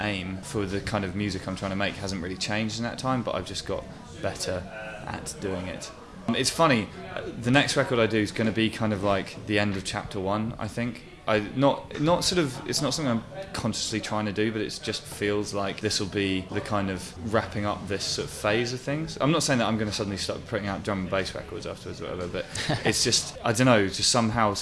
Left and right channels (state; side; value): identical; both; correlation 1.00